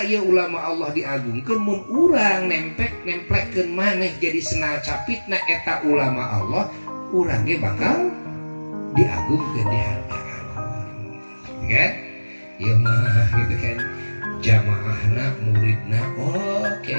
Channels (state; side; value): inverted; both; correlation -1.00